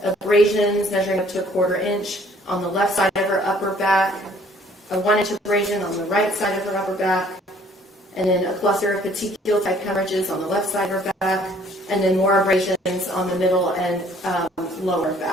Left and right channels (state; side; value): normal; both; correlation 0.58